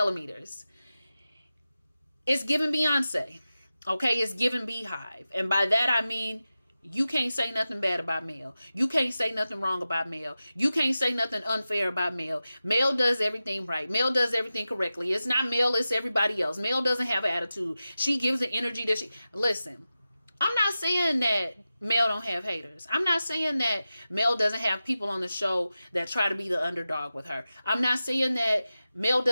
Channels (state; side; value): inverted; both; correlation -0.93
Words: It's giving Beyonce. Okay, it's giving Beehive. And by that, I mean, you can't say nothing bad about Mel. You can't say nothing wrong about Mel. You can't say nothing unfair about Mel. Mel does everything right. Mel does everything correctly. It's not Mel, it's everybody else. Mel doesn't have an attitude. She gives the energy that listen, I'm not saying that Mel don't have haters. I'm not saying that Mel doesn't have people on the show that try to be the underdog with her. I'm not saying that Mel